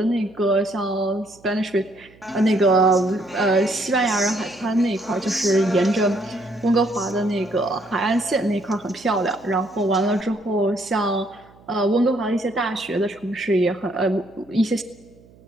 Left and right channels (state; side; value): noise; right; hum, 26 dB below the sound